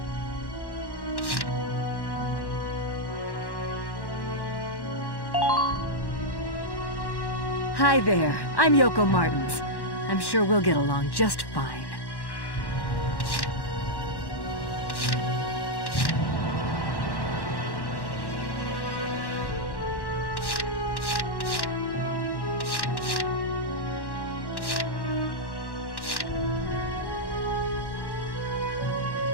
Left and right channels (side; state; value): right; late; 1.1 ms